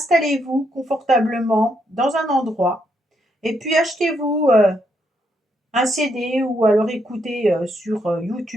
confortablement dans un endroit et puis achetez-vous un CD ou alors écoutez sur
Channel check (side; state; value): both; normal; correlation 0.77